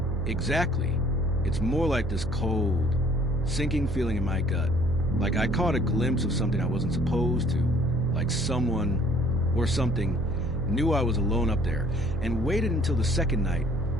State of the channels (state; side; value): noise; right; hum, 8 dB below the sound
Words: Exactly. It's more like this cold, sinking feeling in my gut. Like I caught a glimpse of something I wasn't supposed to. Like someone or something knew I was alone up there and waited until the second night